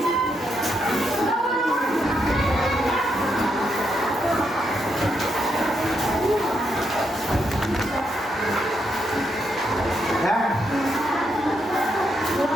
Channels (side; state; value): both; normal; correlation 0.79